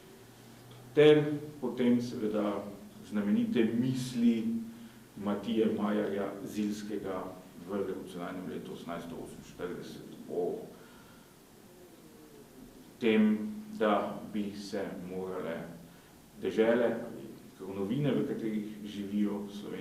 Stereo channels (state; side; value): identical; both; correlation 1.00